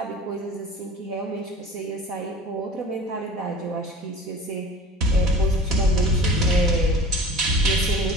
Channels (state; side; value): normal; both; correlation 0.40